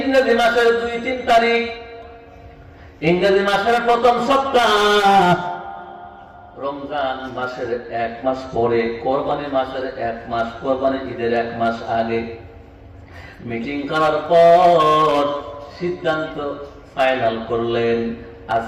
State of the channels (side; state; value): both; identical; correlation 1.00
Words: মাসের 2-3 তারিখ। ইংরেজি মাসের প্রথম সপ্তাহ, রমজান মাসের 1 মাস পরে, কোরবানি মাসের 1 মাস, কোরবানি ঈদের 1 মাস আগে মিটিং করার পর সিদ্ধান্ত ফাইনাল করলেন,